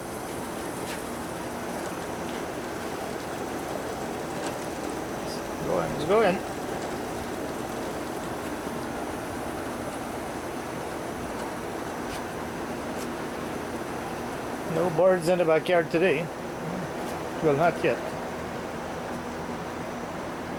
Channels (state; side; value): identical; both; correlation 1.00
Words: Let's go in. No birds in the backyard today. Well, not yet.